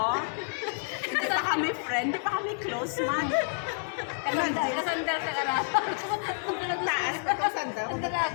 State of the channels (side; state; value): right; silent; 58 dB below the other